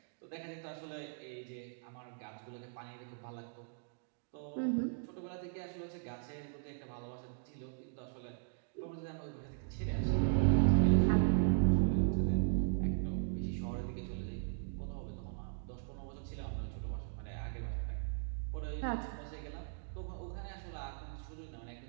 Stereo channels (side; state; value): left; silent; digital silence